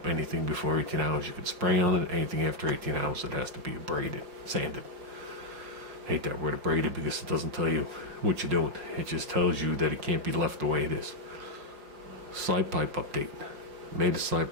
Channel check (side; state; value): left; late; 5.3 ms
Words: Anything before 18 hours you can spray on it. Anything after 18 hours it has to be abraded, sanded. Hate that word abraded because it doesn't tell you what you're doing. It just tells you that it can't be left the way it is. Side pipe update. Made a side